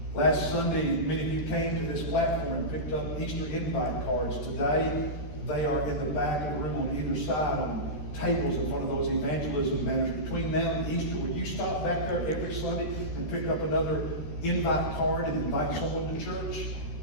Last Sunday, many of you came to this platform and picked up Easter invite cards. Today, they are in the back of the room on either side on tables in front of those evangelism banners. Between now and Easter, will you stop back there every Sunday and pick up another invite card and invite someone to church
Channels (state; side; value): late; right; 13 ms